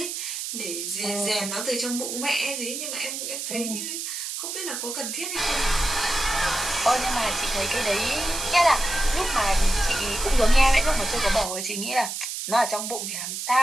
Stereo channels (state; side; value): noise; right; hiss, 5 dB below the sound